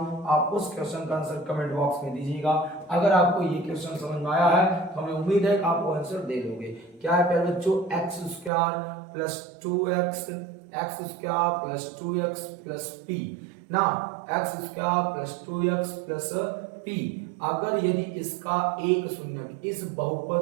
आप उस क्वेश्चन का आंसर कमेंट बॉक्स में दीजिएगा। अगर आपको ये क्वेश्चन समझ में आया है तो हमें उम्मीद है कि आप वो आंसर दे दोगे। क्या है प्यारे बच्चों, x square plus 2x, x square plus 2x plus p ना, x square plus 2x plus p। अगर यदि इसका एक शून्यक, इस बहुपद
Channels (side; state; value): left; drops out; at 8.5 s